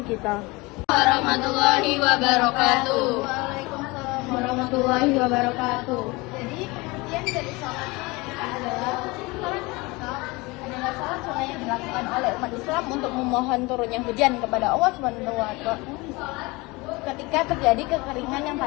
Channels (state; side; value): quieter; right; 24.1 dB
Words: kita. Warahmatullahi wabarakatuh. Waalaikumsalam warahmatullahi wabarakatuh. Jadi pengertian dari sholat adalah sholat adalah sholat sunnah yang dilakukan oleh umat Islam untuk memohon turunnya hujan kepada Allah Subhanahu wa Ta'ala ketika terjadi kekeringan yang